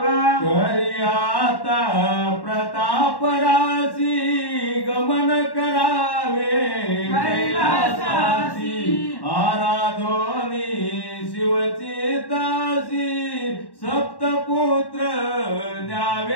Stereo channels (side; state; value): right; late; 1.1 ms